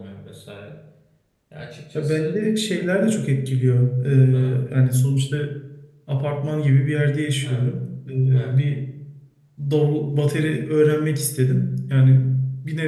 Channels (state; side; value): identical; both; correlation 1.00